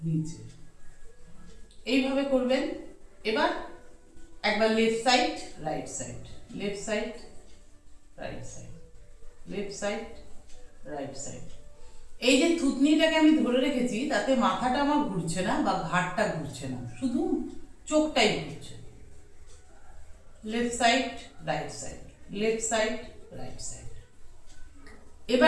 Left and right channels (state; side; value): identical; both; correlation 1.00